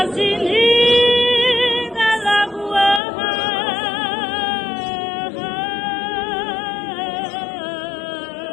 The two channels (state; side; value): drops out; right; at 3.0 s